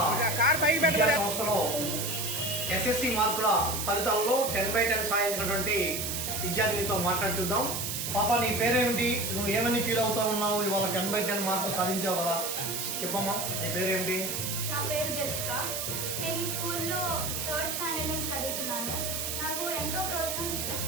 విద్యా సంస్థలో ఎస్ఎస్సి మార్కుల ఫలితాల్లో 10/10 సాధించినటువంటి విద్యార్థినితో మాట్లాడి చూద్దాం. పాప, నీ పేరేమిటి? నువ్వు ఏమని ఫీల్ అవుతా ఉన్నావు? ఇవాళ 10/10 మార్కులు సాధించావు కదా, చెప్పమ్మా, నీ పేరేమిటి? నా పేరు జెసికా. నేను ఈ స్కూల్లో 3rd స్టాండర్డ్ నుంచి చదువుతున్నాను. నాకు ఎంతో ప్రోత్సాహం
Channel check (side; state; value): right; noise; hiss, 2 dB below the sound